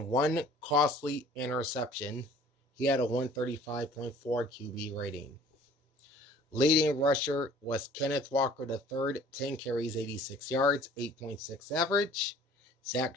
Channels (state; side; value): normal; both; correlation 0.51